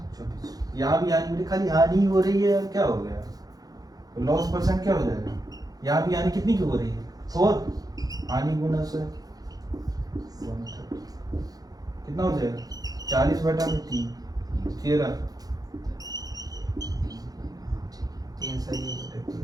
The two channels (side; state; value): left; late; 0.18 ms